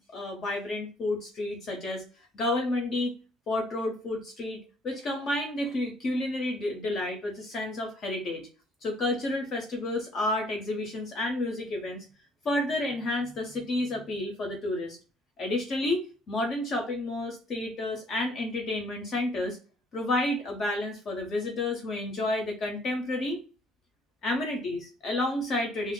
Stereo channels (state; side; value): normal; both; correlation 0.62